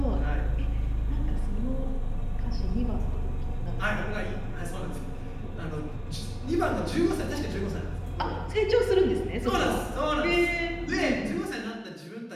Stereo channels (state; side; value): identical; both; correlation 1.00